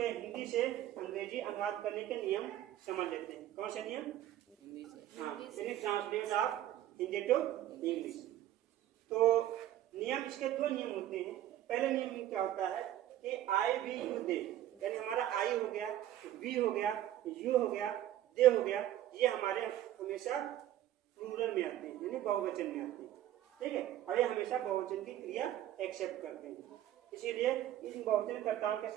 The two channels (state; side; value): quieter; left; 12.7 dB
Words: हिंदी से अंग्रेजी अनुवाद करने के नियम समझ लेते हैं। कौन से नियम? Translate of Hindi to English. तो नियम, इसके दो नियम होते हैं। पहले नियम क्या होता है कि आई वी यू दे, यानी हमारा आई हो गया, वी हो गया, यू हो गया, दे हो गया, ये हमारे हमेशा प्लूरल में आते हैं, यानी बहुवचन में आते हैं, ठीक है। और ये हमेशा बहुवचन की क्रिया एक्सेप्ट करते हैं, इसीलिए इन बहुवचन कर्ताओं के